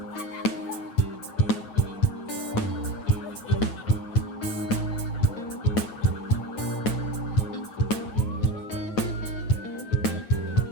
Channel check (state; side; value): late; right; 8.4 ms